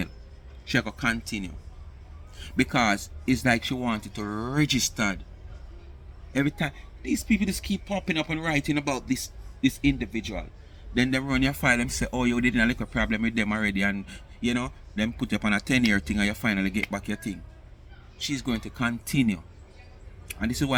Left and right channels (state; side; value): identical; both; correlation 1.00